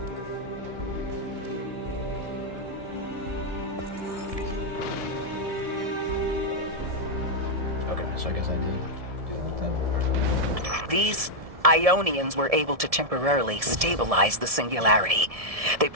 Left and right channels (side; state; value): left; late; 1.7 ms